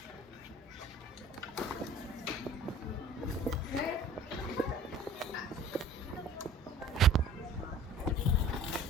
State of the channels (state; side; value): normal; both; correlation 0.47